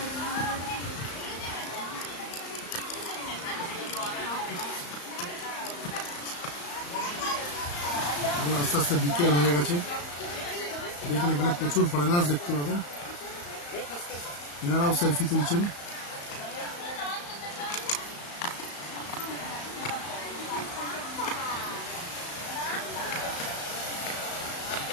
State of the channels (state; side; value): late; right; 35 ms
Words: আস্তে আস্তে বিকেল হয়ে গেছে, দেখুন এখানে প্রচুর ফরেনার্স দেখতে পাবেন, এনারাও সেলফি তুলছেন।